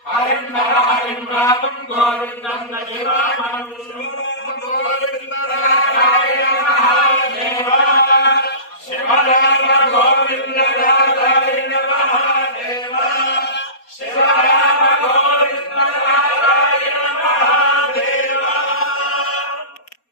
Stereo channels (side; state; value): right; late; 4.2 ms